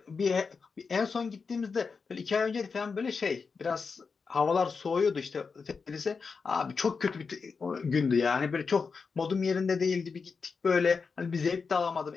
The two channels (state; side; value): quieter; right; 5.1 dB